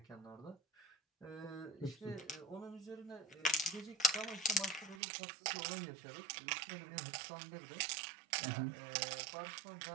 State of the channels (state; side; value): drops out; left; at 5.0 s